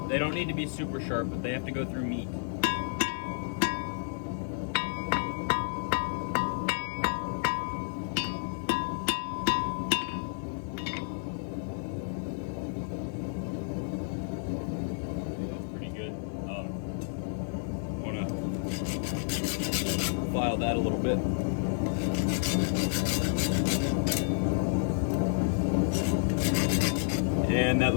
They don't need to be super sharp, but they have to go through meat. That's pretty good. I want to file that a little bit. And that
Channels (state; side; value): silent; right; digital silence